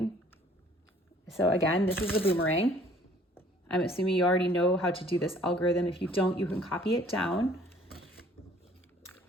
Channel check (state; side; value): normal; both; correlation 0.56